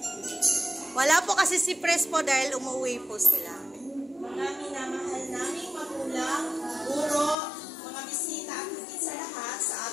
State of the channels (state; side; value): drops out; right; at 7.4 s